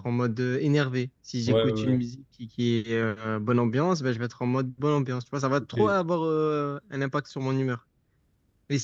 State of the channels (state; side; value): identical; both; correlation 1.00